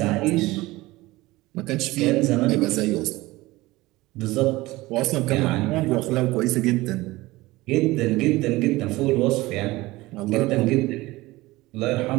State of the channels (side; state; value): left; quieter; 19.6 dB